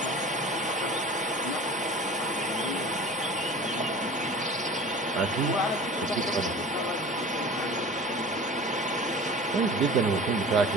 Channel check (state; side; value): normal; both; correlation 0.40